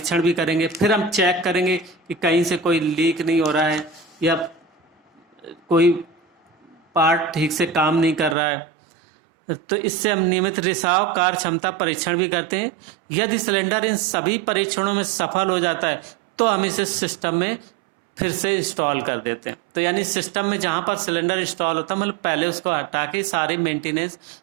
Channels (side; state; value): left; drops out; at 8.3 s